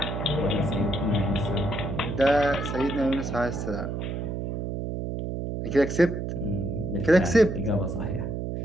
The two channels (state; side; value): noise; right; hum, 3 dB below the sound